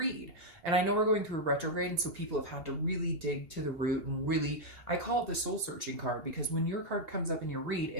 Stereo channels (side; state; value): left; late; 2.8 ms